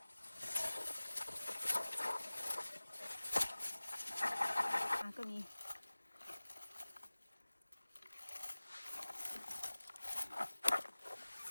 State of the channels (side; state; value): both; inverted; correlation -1.00